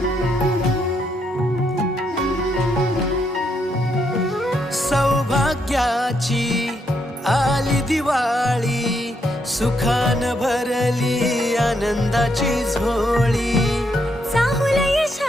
सौभाग्याची आली दिवाळी, सुखान भरली आनंदाची झोळी. चाहुल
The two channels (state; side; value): normal; both; correlation 0.77